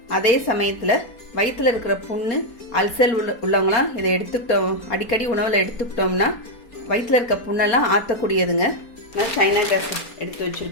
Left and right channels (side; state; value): right; late; 4.3 ms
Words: அதே சமயத்தில் வயிற்றுல இருக்கிற புண்ணு அல்சல் உள்ளவங்களாம் இதை எடுத்துக்கிட்டோம், அடிக்கடி உணவில் எடுத்துக்கிட்டோம்னா வயிற்றுல இருக்க புண்ணெல்லாம் ஆற்றக்கூடியதுங்க. நான் சைனா கிராஸ் எடுத்து